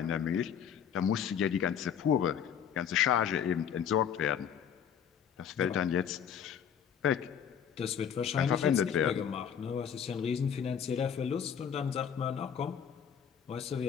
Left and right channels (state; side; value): quieter; right; 8.1 dB